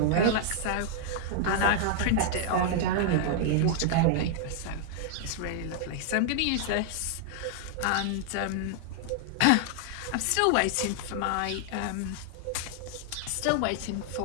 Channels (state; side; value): different; both; correlation 0.00